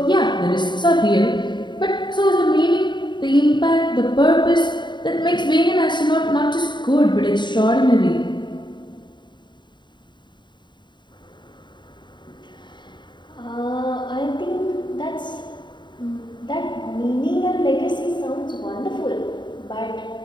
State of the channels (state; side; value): late; right; 0.22 ms